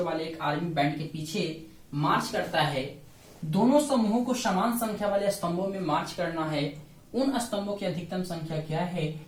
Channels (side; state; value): both; identical; correlation 1.00